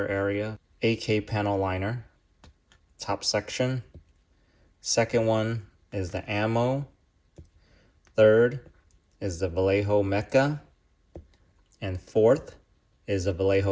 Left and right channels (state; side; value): identical; both; correlation 1.00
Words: area. AK panel liner, top section. Second one is the ammo. Third is the Vallejo Mecha. And fourth is the